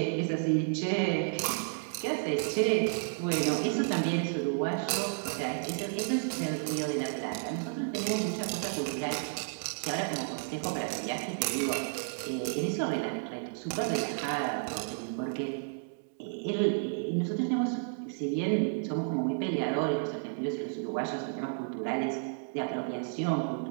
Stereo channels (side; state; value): left; silent; 56 dB below the other